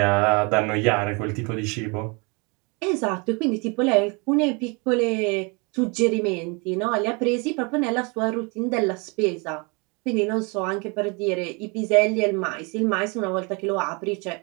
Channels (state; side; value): quieter; left; 30.8 dB